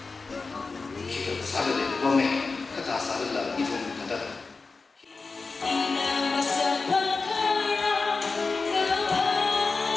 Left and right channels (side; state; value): right; quieter; 4.2 dB